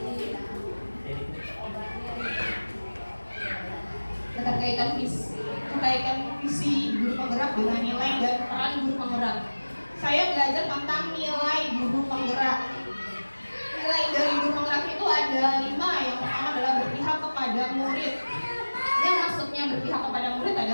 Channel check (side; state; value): both; inverted; correlation -1.00